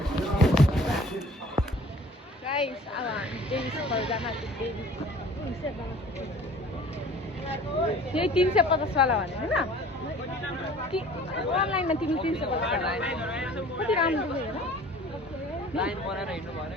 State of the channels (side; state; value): both; normal; correlation 0.48